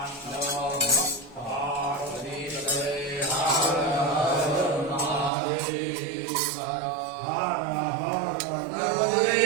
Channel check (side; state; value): left; drops out; at 5.3 s